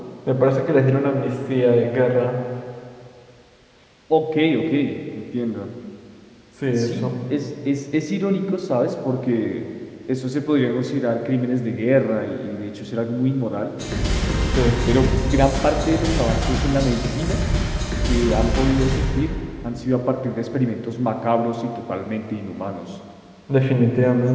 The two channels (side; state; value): both; identical; correlation 1.00